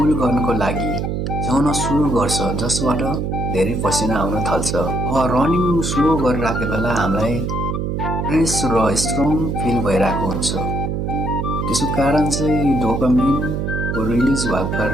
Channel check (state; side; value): noise; right; hum, 1 dB below the sound